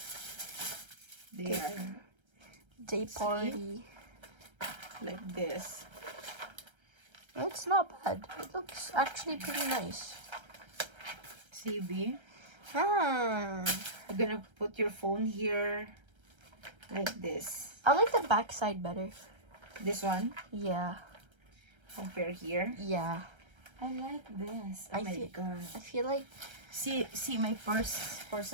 There. Day party. Like this. It's not bad. It looks actually pretty nice. See, B? Ah. You're gonna put your phone here. Like this. I like the back side better. This one. Yeah. Compare here. Yeah. I like this. Oh my god. I feel like... See my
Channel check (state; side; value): late; left; 1.3 ms